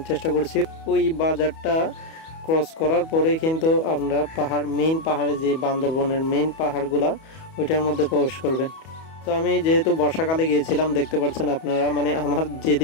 চেষ্টা করছি, ওই বাজারটা ক্রস করার পরে কিন্তু আপনারা মেইন পাহাড়ে যে বান্দরবনের মেইন পাহাড়গুলা ওইটার মধ্যে প্রবেশ করবেন। তো আমি যেহেতু বর্ষাকালে গিয়েছিলাম, দেখতে পাচ্ছেন আপনারা আমার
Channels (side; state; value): right; late; 31 ms